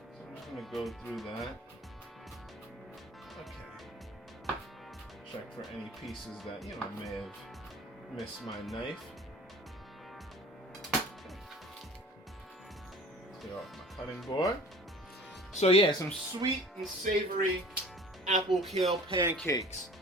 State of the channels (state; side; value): normal; both; correlation 0.46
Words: I'm just gonna go through that. Okay. check for any pieces that, you know, may have missed my knife. Clear off my cutting board. So yeah, some sweet and savory apple kale pancakes.